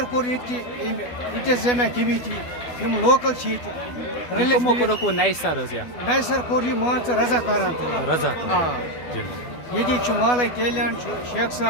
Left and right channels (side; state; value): right; late; 12 ms